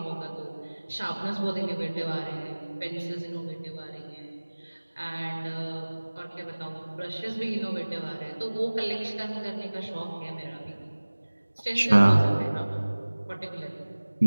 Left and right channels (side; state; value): both; inverted; correlation -1.00